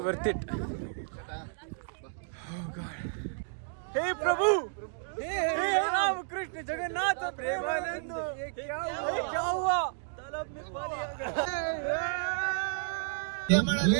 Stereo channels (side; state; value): left; silent; digital silence